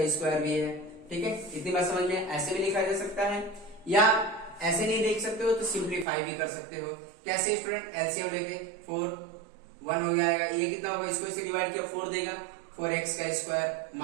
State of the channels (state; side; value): drops out; left; at 6.1 s